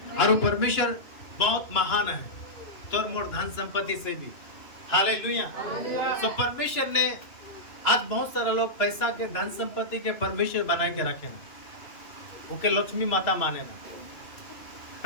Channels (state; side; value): late; right; 2.7 ms